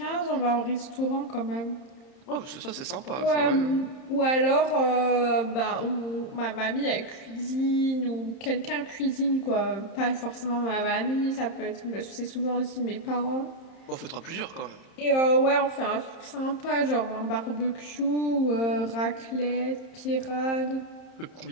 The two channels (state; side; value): late; right; 30 ms